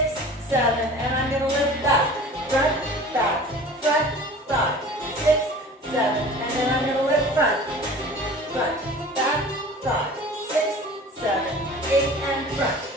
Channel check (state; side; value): normal; both; correlation 0.42